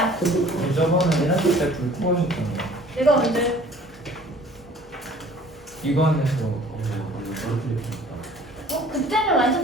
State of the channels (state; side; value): normal; both; correlation 0.51